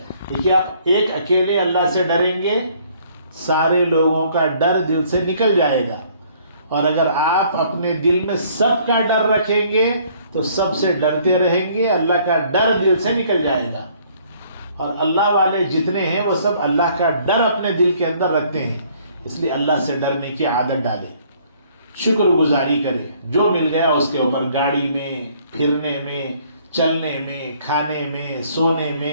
دیکھیے آپ ایک اکیلے اللہ سے ڈریں گے، سارے لوگوں کا ڈر دل سے نکل جائے گا، اور اگر آپ اپنے دل میں سب کا ڈر رکھیں گے تو سب سے ڈرتے رہیں گے، اللہ کا ڈر دل سے نکل جائے گا۔ اور اللہ والے جتنے ہیں وہ سب اللہ کا ڈر اپنے دل کے اندر رکھتے ہیں، اس لیے اللہ سے ڈرنے کی عادت ڈالیں، شکر گزاری کریں، جو مل گیا اس کے اوپر، گاڑی میں، پھرنے میں، چلنے میں، کھانے میں، سونے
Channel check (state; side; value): inverted; both; correlation -0.61